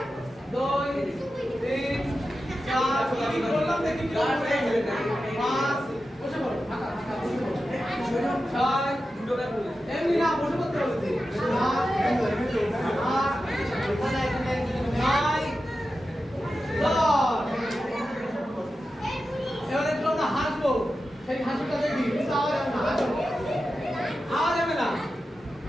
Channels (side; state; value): both; normal; correlation 0.91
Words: 2 3 4 কি বললাম দেখি কি হবে। 5 বসে পড়ো, ফাঁকা ফাঁকা বসে পড়ো। 6 এমনি না বসে পড়তে বলছি। 7 এবারে একটু আমরা হাসবো, সেই হাসিটা দেখি আওয়াজ হবে না, আওয়াজ হবে না,